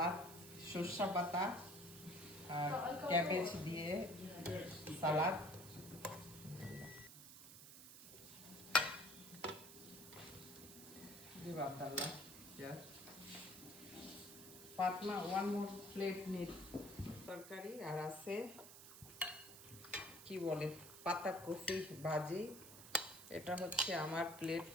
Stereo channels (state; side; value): noise; right; hiss, 14 dB below the sound